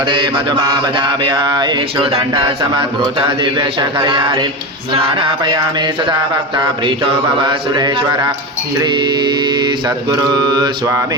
मधुमावदाभ्य ईक्षु दण्ड समद्भूत दिव्यशकर्यारि स्नानापयामि सदा भक्ता प्रीतो भव सुरेश्वर श्री सद्गुरु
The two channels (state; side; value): normal; both; correlation 0.21